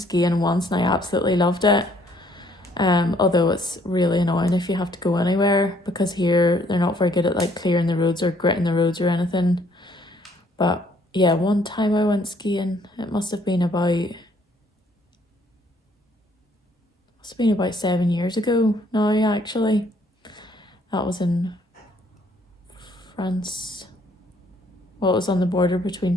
once and I absolutely loved it. Although it's really annoying if you have to go anywhere, because here they're not very good at like clearing the roads or gritting the roads or anything. But yeah, one time I went skiing, it must have been about 7 years ago now, actually. That was in France. Well, it was on the border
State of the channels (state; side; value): normal; both; correlation 0.64